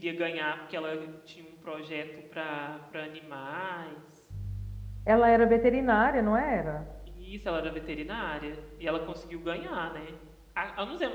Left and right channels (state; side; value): identical; both; correlation 1.00